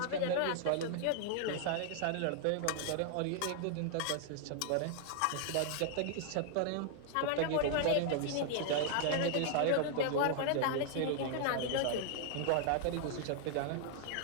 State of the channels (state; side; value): different; both; correlation 0.00